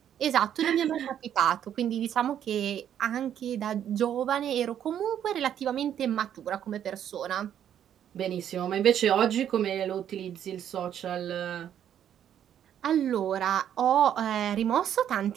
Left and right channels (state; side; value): quieter; left; 9.9 dB